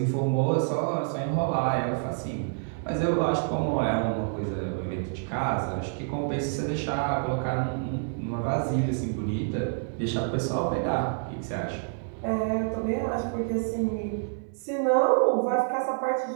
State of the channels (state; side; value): silent; left; digital silence